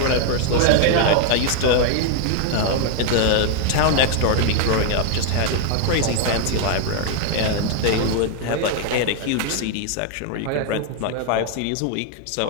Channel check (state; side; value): different; both; correlation 0.00